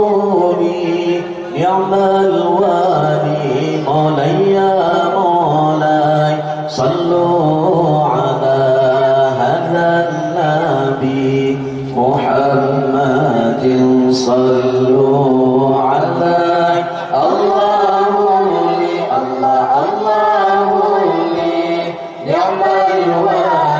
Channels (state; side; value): identical; both; correlation 1.00